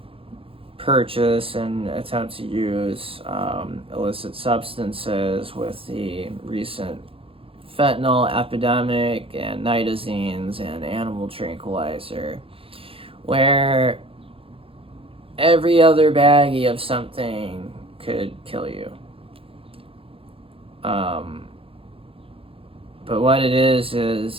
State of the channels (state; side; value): late; left; 0.27 ms